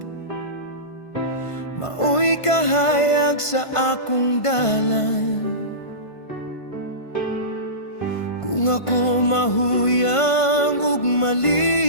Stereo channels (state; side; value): late; right; 1.5 ms